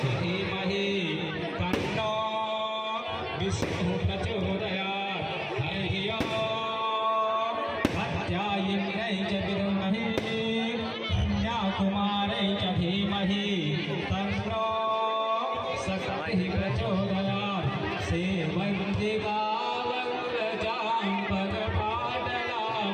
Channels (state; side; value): identical; both; correlation 1.00